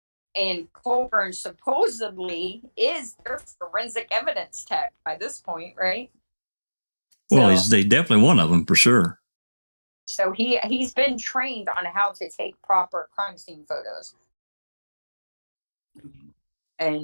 And Colburn supposedly is their forensic evidence tech by this point, right? Well, he's definitely one of them for sure. So he's been trained on how to take proper crime scene photos.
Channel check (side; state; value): both; inverted; correlation -1.00